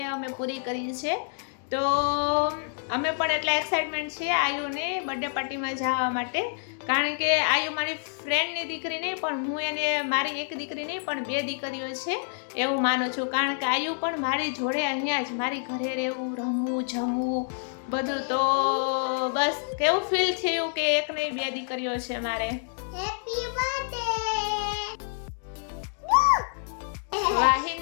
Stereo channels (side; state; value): right; silent; digital silence